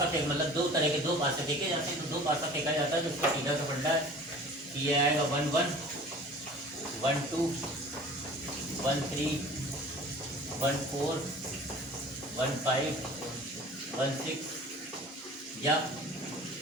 फेंक मतलब दो तरह के दो पासे फेंके जाते हैं। तो दो पासा फेंका जाता है जिसका सीधा सा फंडा है कि ये आएगा 1 1 1 2 1 3 1 4 1 5 1 6 या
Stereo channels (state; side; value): normal; both; correlation 0.44